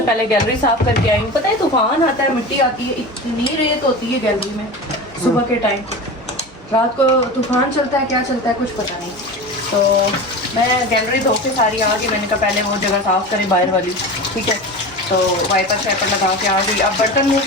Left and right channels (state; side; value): normal; both; correlation 0.29